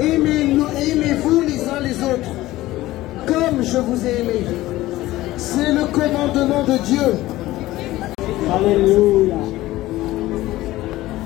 les uns les autres, comme je vous ai aimé. C'est le commandement de Dieu. Alléluia.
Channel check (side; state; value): right; quieter; 16.8 dB